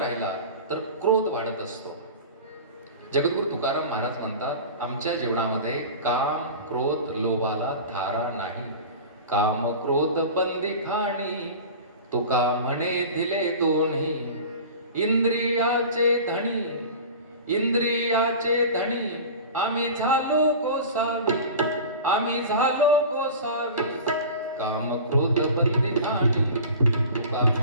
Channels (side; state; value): both; inverted; correlation -0.35